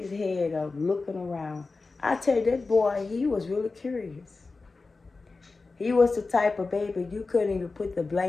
head up, looking around. I tell you, that boy, he was really curious. He was the type of baby you couldn't even put the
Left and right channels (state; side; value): quieter; right; 3.9 dB